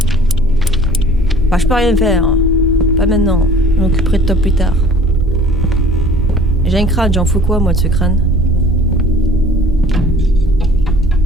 Bah, je peux rien faire. Pas maintenant. Je m'occuperai de toi plus tard. J'ai un crâne, j'en fous quoi moi de ce crâne?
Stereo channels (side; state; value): both; normal; correlation 0.50